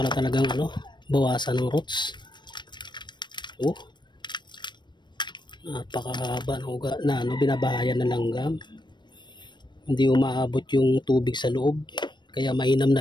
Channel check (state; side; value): late; right; 0.22 ms